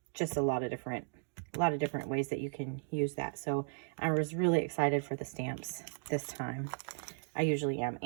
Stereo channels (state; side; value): silent; left; digital silence